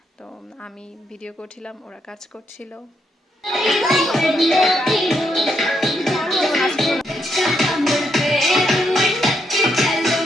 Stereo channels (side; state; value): both; normal; correlation 0.78